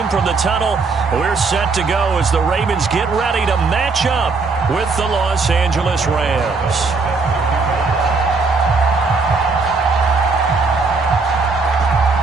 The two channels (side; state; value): left; quieter; 4.2 dB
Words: from the tunnel. We're set to go as the Ravens get ready to match up with the Los Angeles Rams.